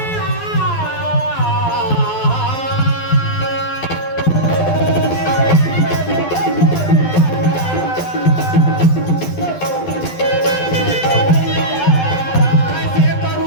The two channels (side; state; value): right; late; 12 ms